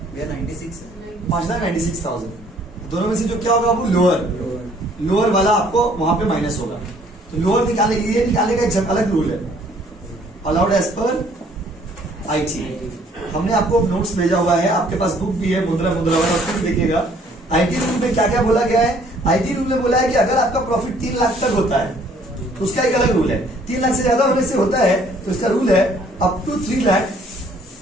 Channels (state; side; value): normal; both; correlation 0.60